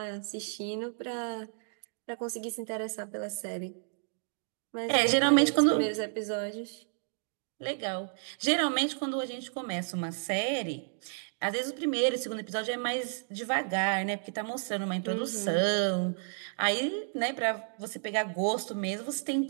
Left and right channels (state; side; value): silent; left; 57 dB below the other